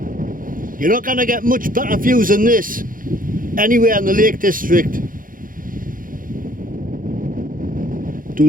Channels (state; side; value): late; left; 0.40 ms